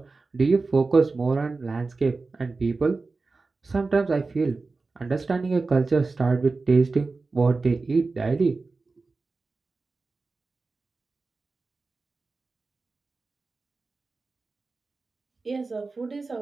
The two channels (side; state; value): left; quieter; 3.9 dB